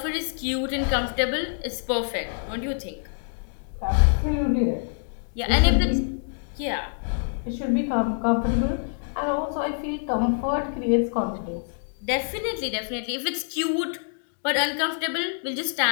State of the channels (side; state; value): right; silent; digital silence